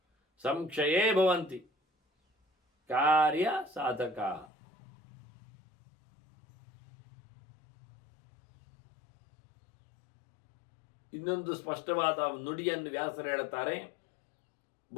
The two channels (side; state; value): right; drops out; at 4.5 s